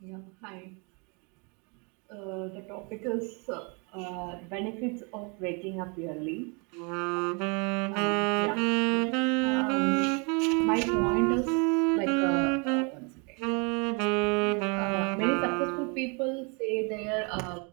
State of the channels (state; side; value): quieter; left; 33.4 dB